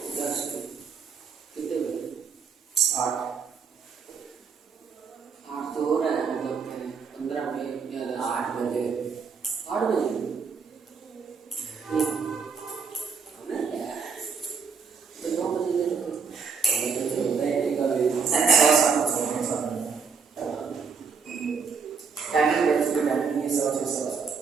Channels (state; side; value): quieter; left; 5.7 dB